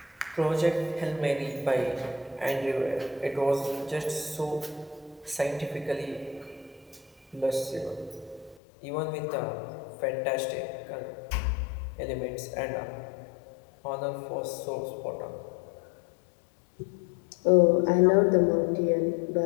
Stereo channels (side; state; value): right; drops out; at 8.6 s